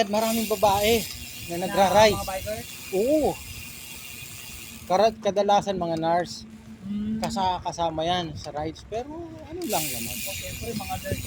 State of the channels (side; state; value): both; identical; correlation 1.00